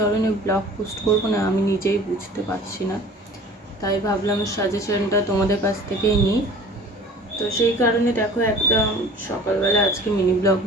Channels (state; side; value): normal; both; correlation 0.45